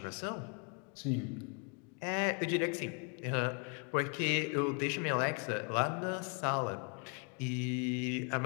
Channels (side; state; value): right; quieter; 38.7 dB